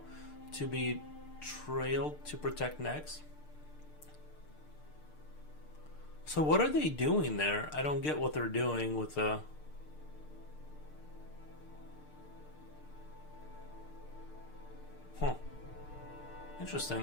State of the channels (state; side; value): late; right; 6.6 ms